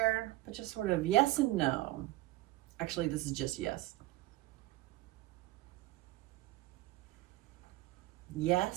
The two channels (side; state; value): left; quieter; 17.7 dB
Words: but just sort of yes and no. Actually, this is just yes.